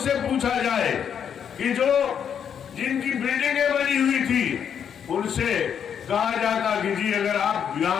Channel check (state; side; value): quieter; right; 8.1 dB